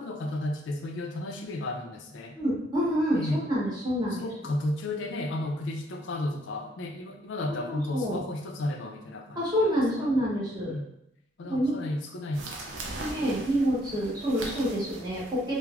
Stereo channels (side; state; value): both; normal; correlation 0.68